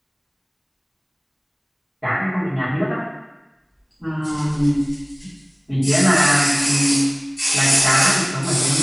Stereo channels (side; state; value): both; identical; correlation 1.00